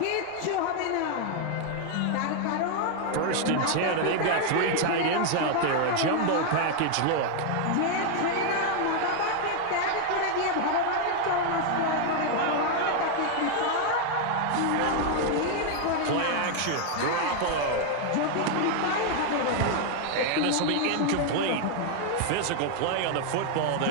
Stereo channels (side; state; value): both; different; correlation 0.00